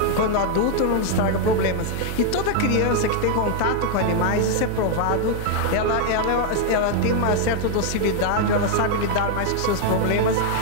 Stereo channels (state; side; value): different; both; correlation 0.00